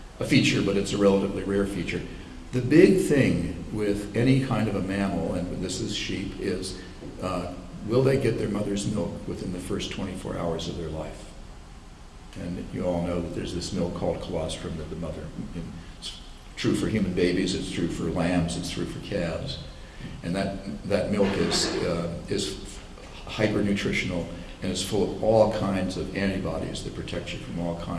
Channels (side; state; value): both; identical; correlation 1.00